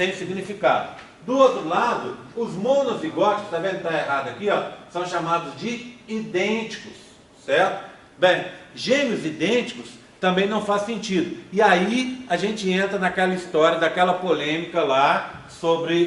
significado. Do outro lado, os monozigóticos, está vendo que está errado aqui, ó, são chamados de idênticos, certo? Bem, gêmeos idênticos também não faz sentido. E aí a gente entra naquela história, daquela polêmica lá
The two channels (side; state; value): both; identical; correlation 1.00